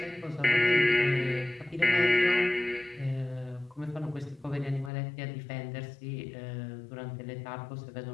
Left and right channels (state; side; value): drops out; right; at 4.9 s